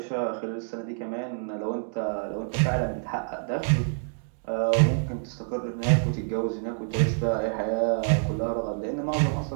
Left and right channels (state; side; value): silent; left; 60 dB below the other